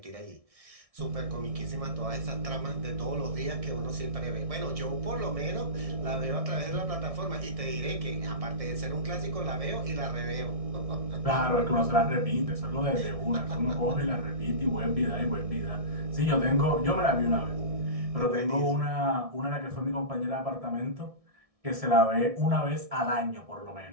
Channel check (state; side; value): late; left; 1.6 ms